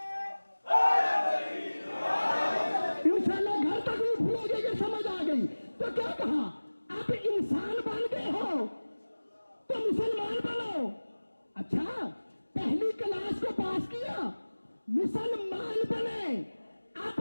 इंशाल्लाह घर तक नहीं भूलोगे कि समझ आ गई। तो क्या कहा, अब इंसान बन गए हो तो मुसलमान बनो। अच्छा, पहली क्लास को पास किया, मुसलमान बने।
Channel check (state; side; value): inverted; both; correlation -1.00